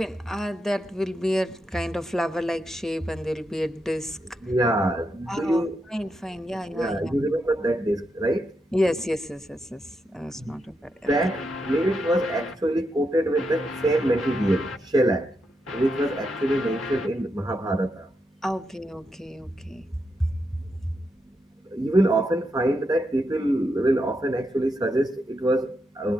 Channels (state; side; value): normal; both; correlation 0.83